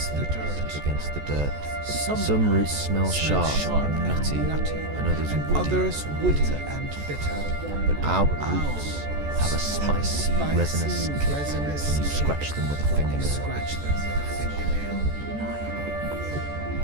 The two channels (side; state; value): left; late; 14 ms